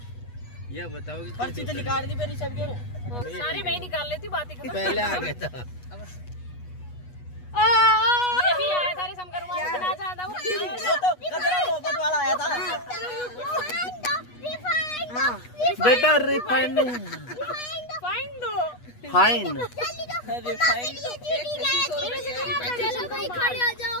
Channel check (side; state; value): right; late; 8.2 ms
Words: ये बताओ कि पर्ची तो निकाल दी मेरी सब के सारी मैं ही निकाल लेती बातें कर। पहले आ गया था। ये भी आया था रे शंकर मामा इतना ज्यादा वो तो कचरा मोहब्बत वाला आया था। बेटा रिफाइंड नहीं, फाइन दो। फाइन। रिफाइंड चलो भाई खड़े हो जाओ